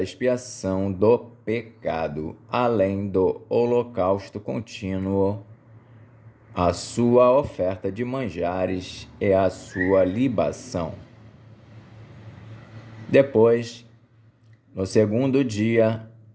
expiação do pecado, além do holocausto contínuo, a sua oferta de manjares e a sua libação. Depois, no 2º dia,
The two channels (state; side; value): identical; both; correlation 1.00